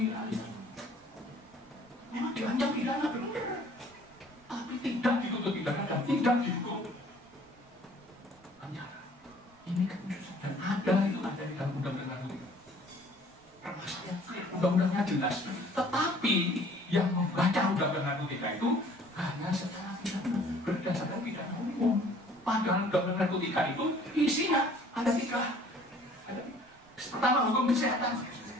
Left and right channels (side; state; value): right; noise; rumble, 30 dB below the sound